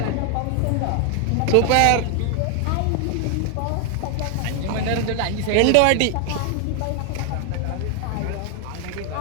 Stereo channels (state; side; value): different; both; correlation 0.01